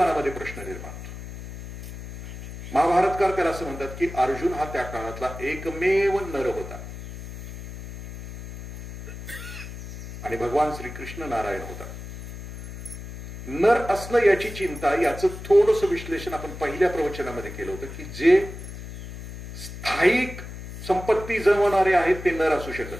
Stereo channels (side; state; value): left; noise; hum, 11 dB below the sound